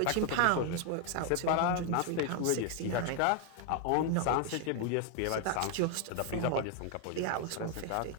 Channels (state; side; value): different; both; correlation 0.00